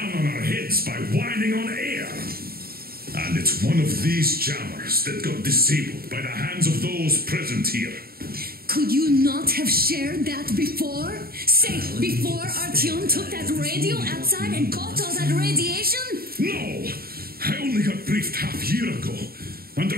on our heads by whining on air. And it's one of these jammers that got disabled by the hands of those present here. Could you not have shared that before? Say, before Artyom took that radio outside and caught all that radiation? No! I only got briefed half a year ago,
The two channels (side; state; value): left; late; 0.44 ms